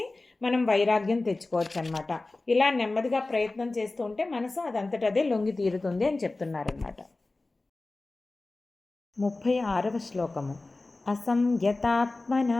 మనం వైరాగ్యం తెచ్చుకోవచ్చు అనమాట. ఇలా నెమ్మదిగా ప్రయత్నం చేస్తూ ఉంటే మనసు అదంతటదే లొంగి తీరుతుంది అని చెప్తున్నారన్నమాట. 36వ శ్లోకము.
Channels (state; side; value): quieter; right; 3.2 dB